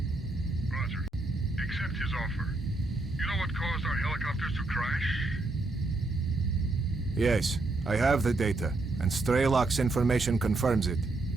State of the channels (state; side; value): quieter; left; 3.1 dB